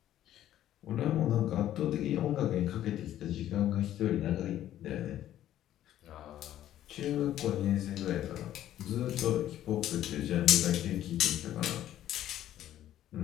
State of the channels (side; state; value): right; quieter; 12.3 dB